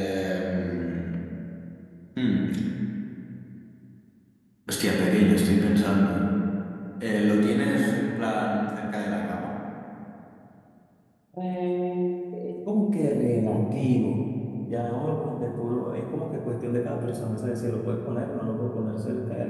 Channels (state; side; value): identical; both; correlation 1.00